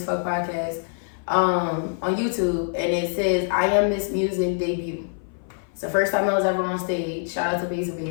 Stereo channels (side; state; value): right; silent; 58 dB below the other